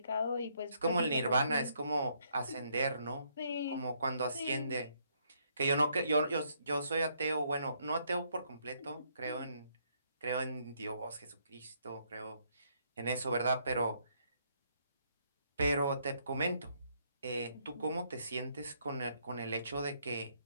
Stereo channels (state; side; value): inverted; both; correlation -0.71